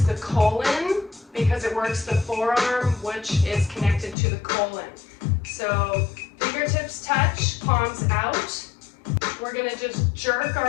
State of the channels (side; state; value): right; drops out; at 4.2 s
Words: the colon because it works the forearm, which is connected to the colon. So fingertips touch, palms out. We're going to just jerk our